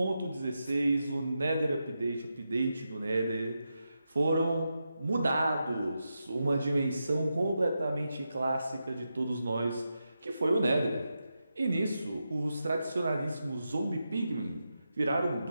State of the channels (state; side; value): inverted; both; correlation -0.88